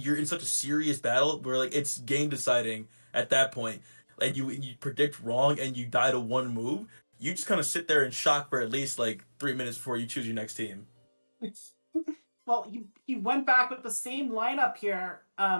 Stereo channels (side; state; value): both; inverted; correlation -1.00